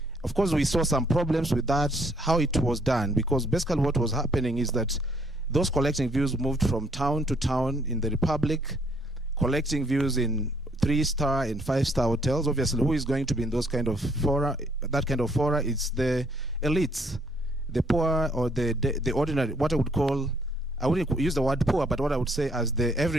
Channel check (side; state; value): both; normal; correlation 0.67